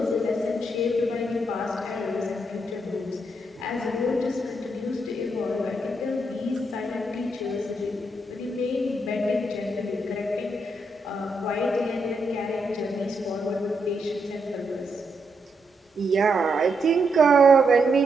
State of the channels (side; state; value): both; normal; correlation 0.80